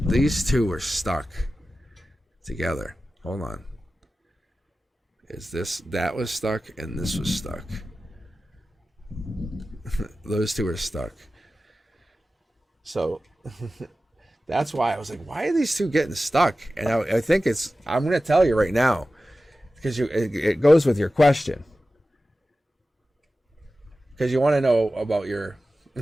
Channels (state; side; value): normal; both; correlation 0.95